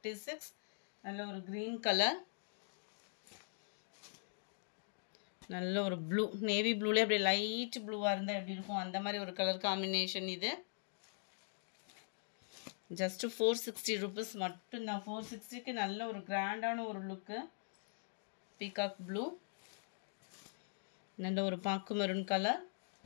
நல்ல ஒரு க்ரீன் கலர், நல்ல ஒரு ப்ளூ, நேவி ப்ளூலே அப்படியே லைட் ப்ளூவாக இருந்தால் எப்படி இருக்கும் அந்த மாதிரி ஒரு கலர் காம்பினேஷன் இது. ஜஸ்ட்டு 460 rupees மட்டும்தான். 460க்கு நல்ல ஒரு கிராண்டான ஒரு லுக்கு. பீகாக் ப்ளூ, நல்ல ஒரு பாக்கு maroon colour,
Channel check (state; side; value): silent; right; digital silence